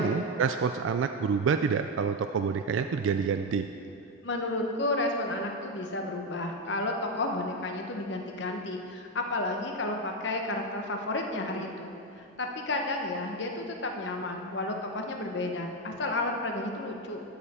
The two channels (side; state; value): both; normal; correlation 0.09